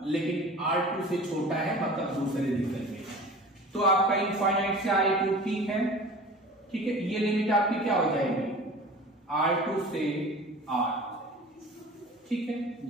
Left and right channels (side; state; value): both; normal; correlation 0.40